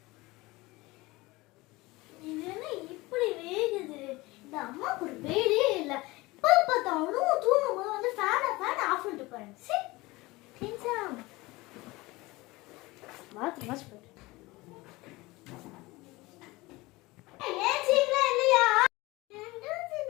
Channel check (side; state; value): right; quieter; 21.4 dB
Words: இது என்ன இப்படி வேகுது? இந்த அம்மாவுக்கு ஒரு வேலையே இல்லை. இப்போ பார்த்தாலும் தூங்கும் போது வந்து ஃபேனை ஆஃப் பண்ணிட்டு போறேன். சரி மாத்து மாச்சு போயிட்டு